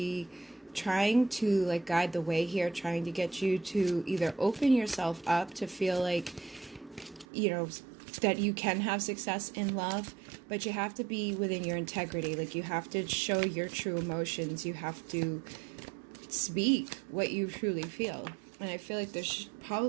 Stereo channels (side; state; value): left; drops out; at 7.2 s